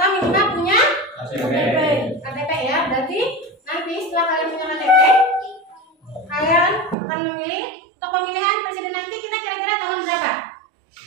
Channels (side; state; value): left; drops out; at 7.0 s